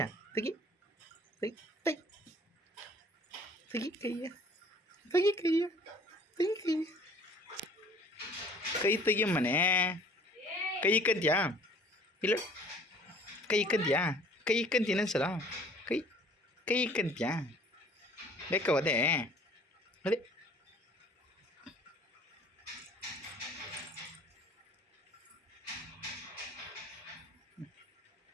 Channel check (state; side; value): normal; both; correlation 0.51